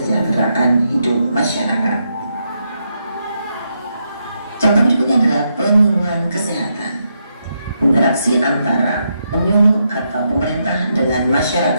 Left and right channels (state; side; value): inverted; both; correlation -0.81